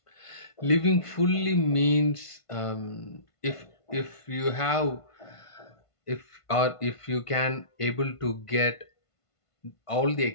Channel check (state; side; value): late; right; 1.5 ms